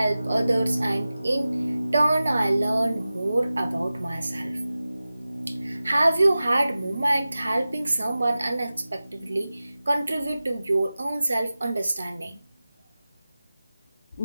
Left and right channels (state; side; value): inverted; both; correlation -0.96